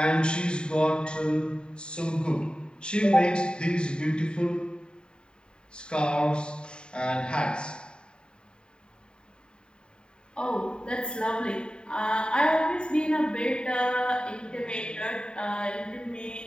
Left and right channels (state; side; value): late; right; 0.050 ms